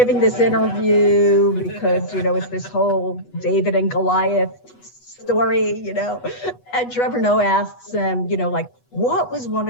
this interview because, it's this whole David and Goliath story, and Trevor Noah asks him, what was one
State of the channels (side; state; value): right; late; 8.2 ms